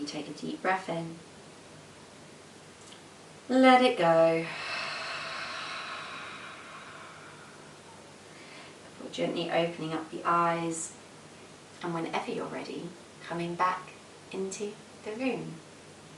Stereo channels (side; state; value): both; identical; correlation 1.00